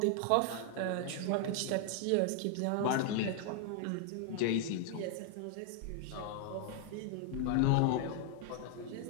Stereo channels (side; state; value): both; different; correlation 0.00